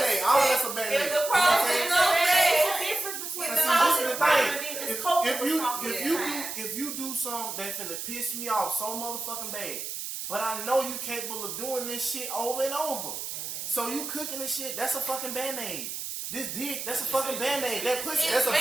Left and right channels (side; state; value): right; noise; hiss, 6 dB below the sound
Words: All of that's a band-aid. If the You know what I'm problem saying? is no sex, There's a difference between But the see, this is the and the thing. just coping with something. If you do something that's finna piss me off so motherfucking bad, but I know you capable of doing this shit over and over, so you cooking this shit, that's a fucking band-aid. This dick, that's a fucking band-aid. That pussy, that's a